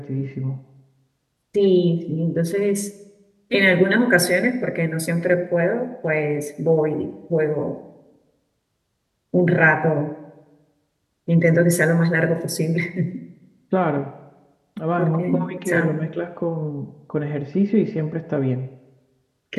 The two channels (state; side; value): identical; both; correlation 1.00